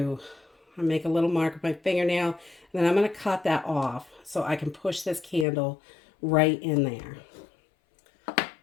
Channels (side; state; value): right; drops out; at 5.5 s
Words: I make a little mark with my fingernail, and then I'm going to cut that off so I can push this candle right in there.